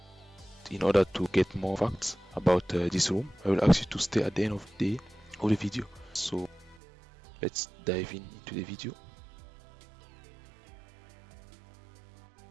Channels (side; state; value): left; drops out; at 6.8 s